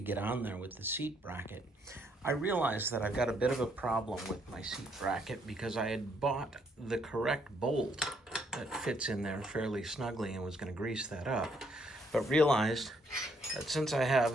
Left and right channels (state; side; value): normal; both; correlation 0.70